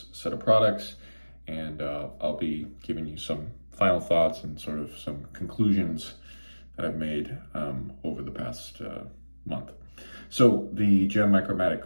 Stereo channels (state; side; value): inverted; both; correlation -1.00